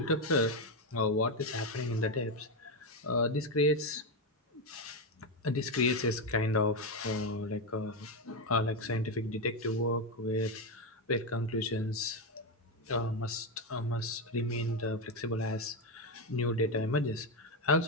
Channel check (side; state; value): both; normal; correlation 0.09